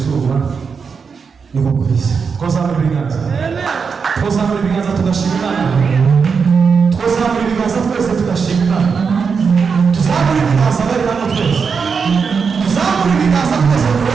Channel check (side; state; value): left; quieter; 5.7 dB